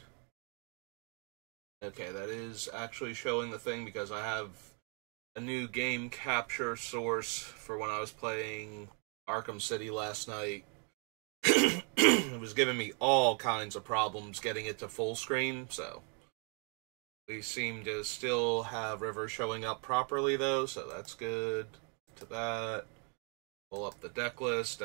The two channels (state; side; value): quieter; left; 37.9 dB